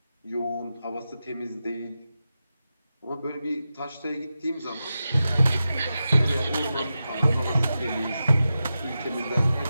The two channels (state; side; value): inverted; both; correlation -0.92